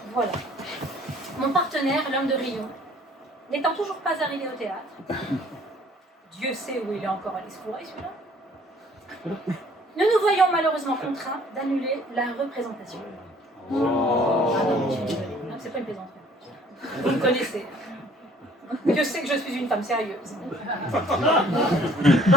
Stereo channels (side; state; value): both; normal; correlation 0.56